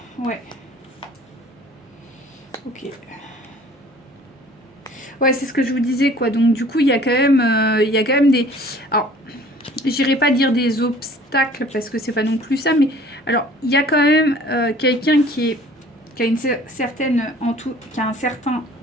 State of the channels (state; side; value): normal; both; correlation 0.51